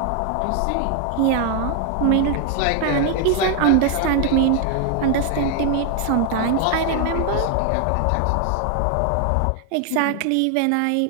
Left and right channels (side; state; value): both; different; correlation 0.00